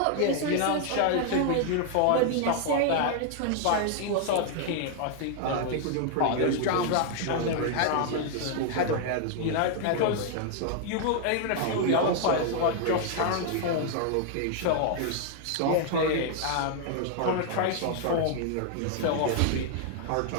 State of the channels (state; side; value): different; both; correlation 0.00